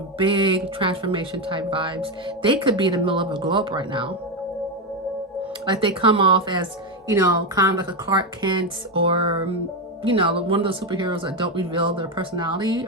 big transformation type vibes. They could be in the middle of a globe right now. Like they come off as, you know, kind of like a Clark Kent, or, you know, one of those superheroes that don't reveal their personality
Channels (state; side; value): normal; both; correlation 0.09